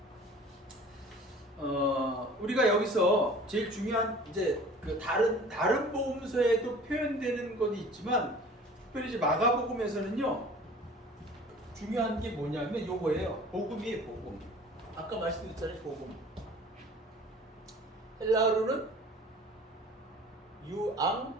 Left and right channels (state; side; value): normal; both; correlation 0.46